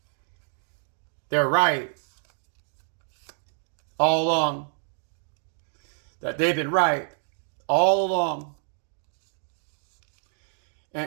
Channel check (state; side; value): silent; left; 59 dB below the other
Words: they're right all along. That they've been right all along.